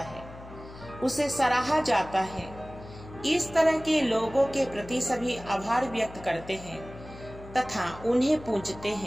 उसे सराहा जाता है। इस तरह के लोगों के प्रति सभी आभार व्यक्त करते हैं तथा उन्हें पूजते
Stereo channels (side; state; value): left; noise; hum, 16 dB below the sound